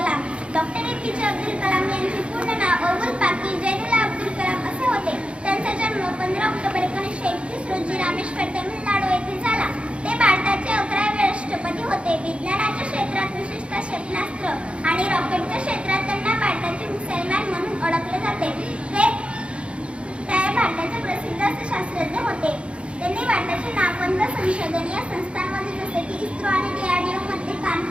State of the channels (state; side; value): late; left; 0.059 ms